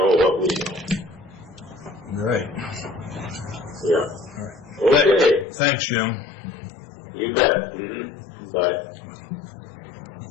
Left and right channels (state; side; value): drops out; right; at 5.5 s